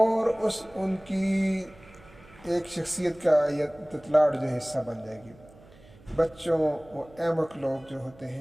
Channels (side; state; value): right; noise; hum, 24 dB below the sound